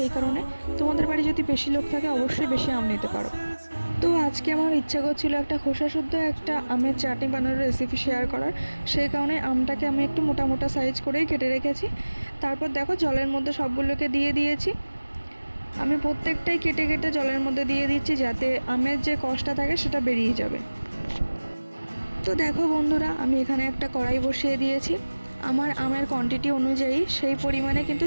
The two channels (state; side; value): inverted; both; correlation -1.00